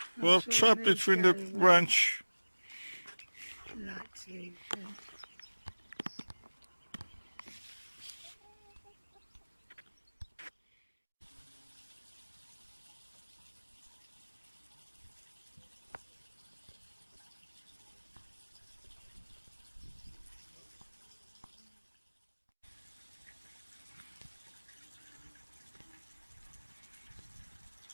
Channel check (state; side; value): inverted; both; correlation -1.00